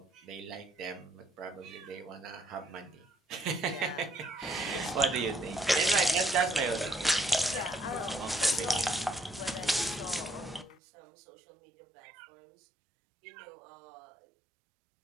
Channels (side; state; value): left; drops out; at 10.8 s